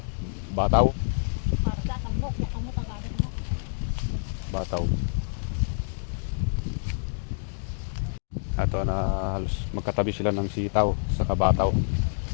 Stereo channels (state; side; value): silent; right; digital silence